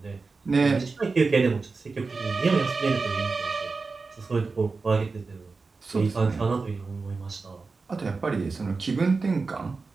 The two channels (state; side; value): quieter; left; 4.2 dB